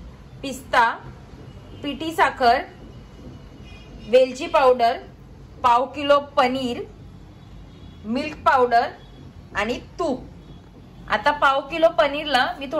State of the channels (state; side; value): identical; both; correlation 1.00